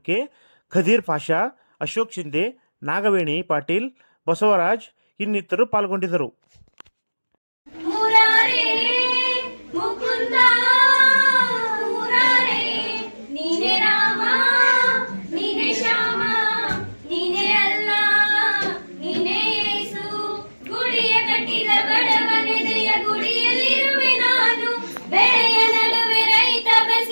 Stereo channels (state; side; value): inverted; both; correlation -1.00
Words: ಖದೀರ್ ಪಾಷಾ, ಅಶೋಕ್ ಶಿಂದೆ, ನಾಗವೇಣಿ ಪಾಟೀಲ್, ಬಸವರಾಜ್ ಇನ್ನಿತರರು ಪಾಲ್ಗೊಂಡಿದ್ದರು.